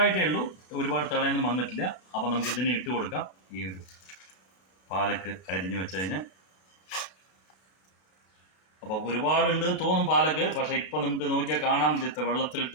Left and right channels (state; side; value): late; right; 32 ms